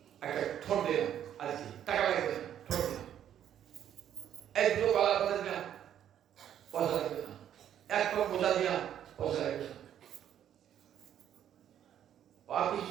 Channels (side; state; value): left; quieter; 10.2 dB